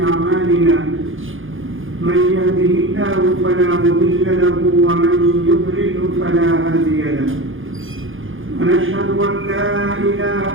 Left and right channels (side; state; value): left; late; 0.58 ms